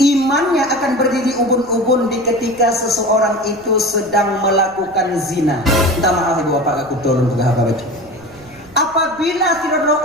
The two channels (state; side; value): noise; right; rumble, 25 dB below the sound